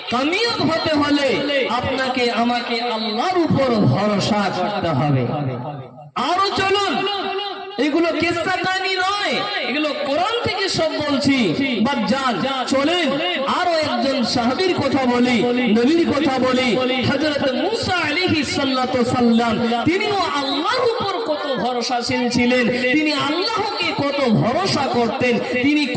কামিয়াব হতে হলে আপনাকে আমাকে আল্লাহর উপর ভরসা করতে হবে। আরো চলুন, এগুলো কিসসা কাহিনী নয়, এগুলো কোরআন থেকে সব বলছি। বাজান চলেন আরো একজন সাহাবীর কথা বলি, নবীর কথা বলি। হযরত মুসা আলাইহিস সালাতু সাল্লাম, তিনিও আল্লাহর উপর কত ভরসাশীল ছিলেন, তিনি আল্লাহকে কত ভরসা করতেন, তিনি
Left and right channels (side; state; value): both; identical; correlation 1.00